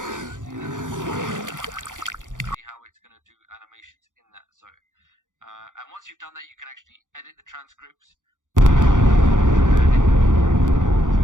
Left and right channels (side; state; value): left; late; 0.87 ms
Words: See how it's going to do animations in that. So, and once you've done that, you can actually edit the transcripts.